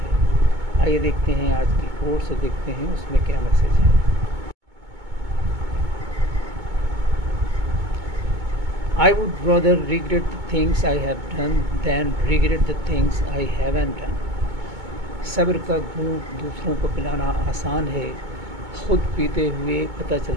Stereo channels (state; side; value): late; left; 2.2 ms